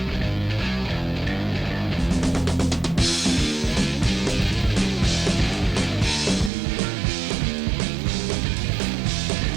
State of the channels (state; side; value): drops out; left; at 6.5 s